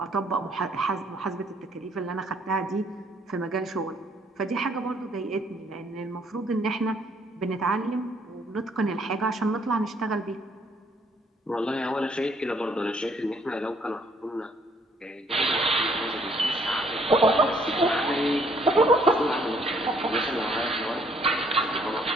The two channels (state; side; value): normal; both; correlation 0.65